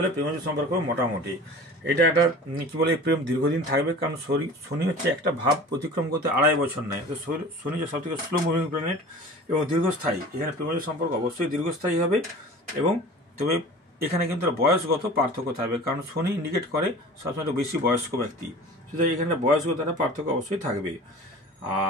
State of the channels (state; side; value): normal; both; correlation 0.40